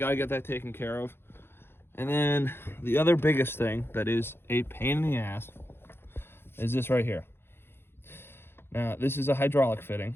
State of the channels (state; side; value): late; right; 0.11 ms